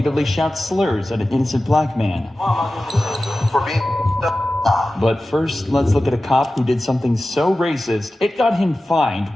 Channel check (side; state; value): both; normal; correlation 0.95